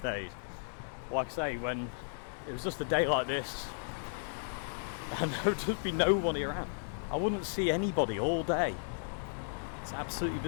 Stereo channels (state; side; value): silent; right; digital silence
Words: days. Like I say, when it was just a day like this, and there would just be nobody around. I wouldn't see anybody all day. It's absolutely